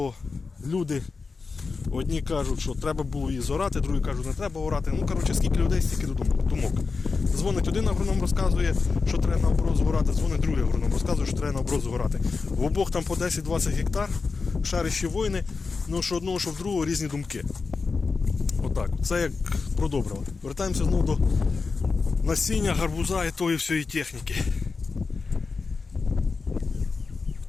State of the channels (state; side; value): quieter; right; 4.5 dB